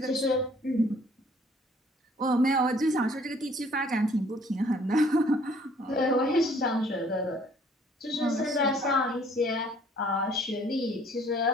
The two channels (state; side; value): normal; both; correlation 0.59